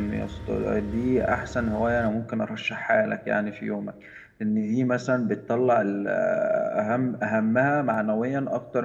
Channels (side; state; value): both; identical; correlation 1.00